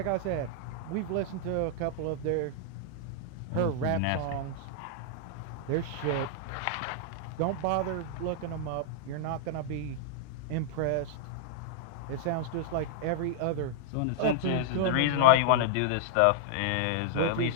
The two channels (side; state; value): both; different; correlation -0.01